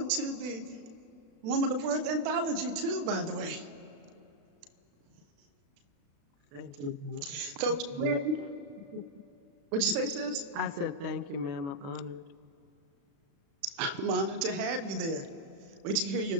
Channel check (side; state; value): left; late; 36 ms